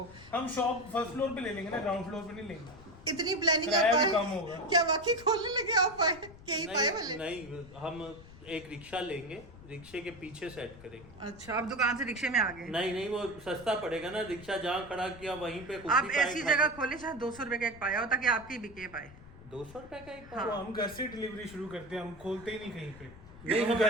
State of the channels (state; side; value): noise; left; rumble, 19 dB below the sound